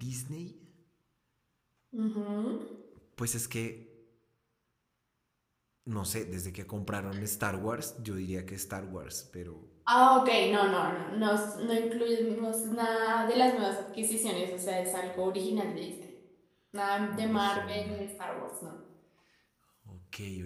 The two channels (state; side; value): identical; both; correlation 1.00